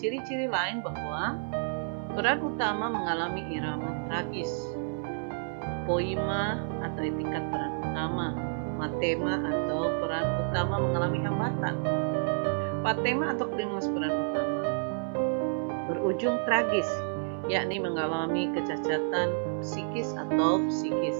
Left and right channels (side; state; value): left; silent; 58 dB below the other